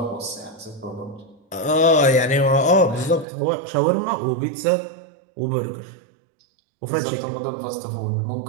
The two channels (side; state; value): left; drops out; at 3.2 s